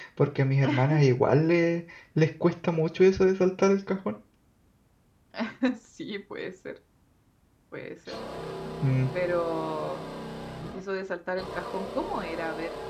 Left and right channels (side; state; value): both; identical; correlation 1.00